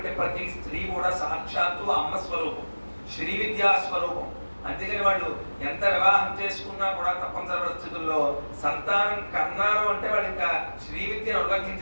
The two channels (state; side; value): inverted; both; correlation -1.00